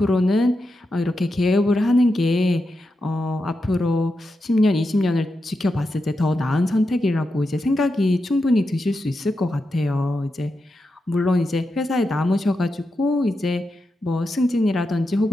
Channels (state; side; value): normal; both; correlation 0.88